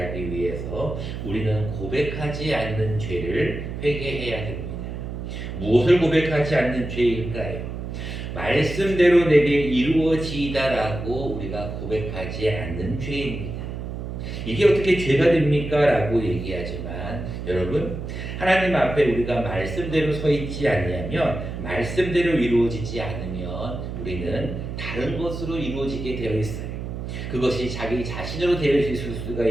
위해서 우리는 고백하지 않는 죄를 회개해야 됩니다. 무엇을 고백하지 않는 죄일까요? 말씀대로 내게 이루어지이다라고 우리가 고백하지 않는 죄입니다. 이게 어떻게 죄가 됩니까? 라고 얘기하지만 여러분, 하나님 앞에 우리가 말씀대로 서 있지 않으면, 말씀대로 이루어지지 않으면 우리는 다른 것으로 이루어지게 되어 있어요. 그것이 자기 자신으로 되어 있을 수가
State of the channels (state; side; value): noise; right; hum, 6 dB below the sound